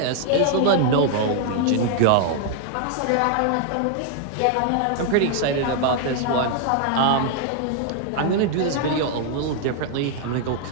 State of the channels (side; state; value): both; different; correlation 0.00